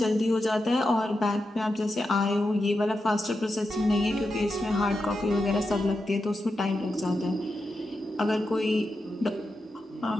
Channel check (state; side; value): normal; both; correlation 0.88